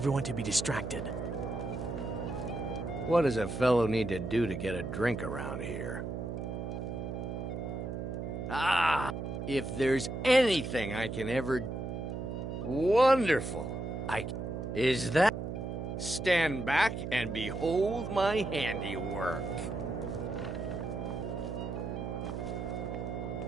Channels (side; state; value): right; noise; hum, 5 dB below the sound